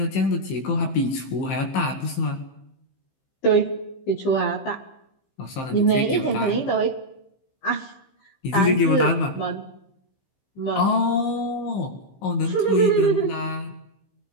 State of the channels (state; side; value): late; right; 15 ms